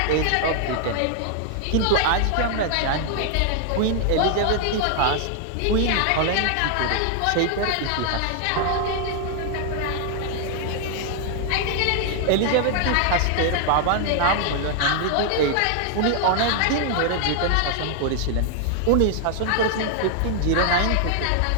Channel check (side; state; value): both; different; correlation 0.00